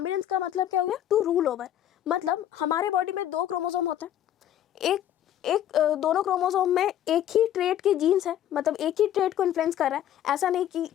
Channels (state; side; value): quieter; right; 11.3 dB